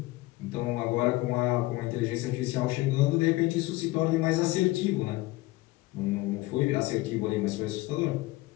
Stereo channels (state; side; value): quieter; right; 19.4 dB